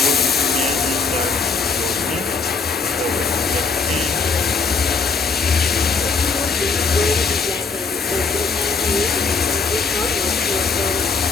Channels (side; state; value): right; quieter; 4.7 dB